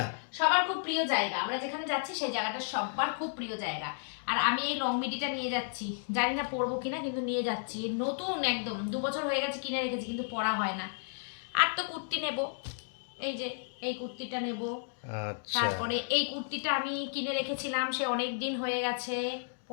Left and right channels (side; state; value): right; silent; digital silence